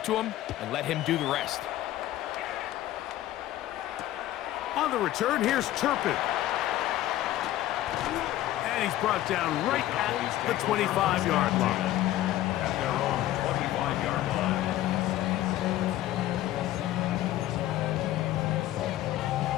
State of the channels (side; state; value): right; quieter; 14.2 dB